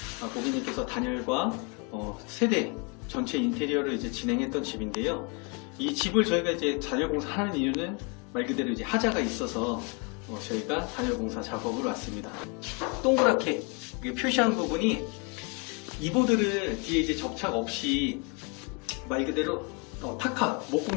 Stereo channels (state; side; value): quieter; right; 33.2 dB